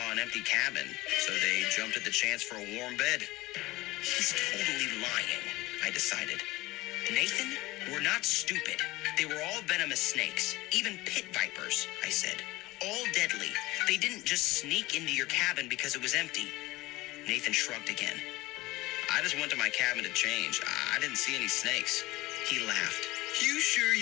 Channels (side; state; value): right; quieter; 19.5 dB